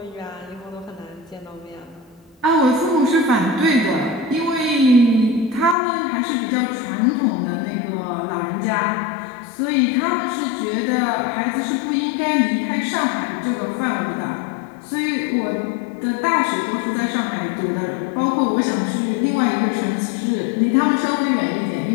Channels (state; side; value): drops out; right; at 5.8 s